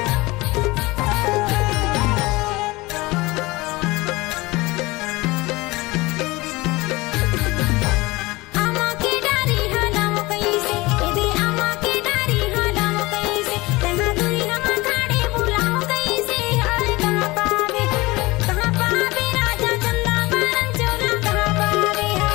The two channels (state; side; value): quieter; right; 21.8 dB